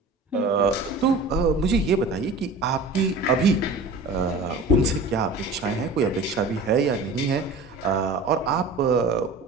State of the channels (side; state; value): left; quieter; 3.3 dB